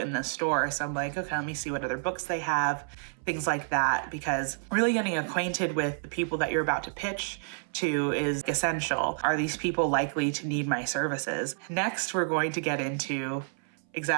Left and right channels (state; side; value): silent; left; 58 dB below the other